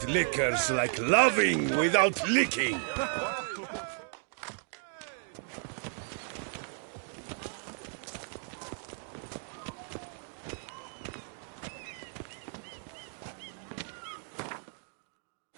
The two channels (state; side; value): silent; left; 55 dB below the other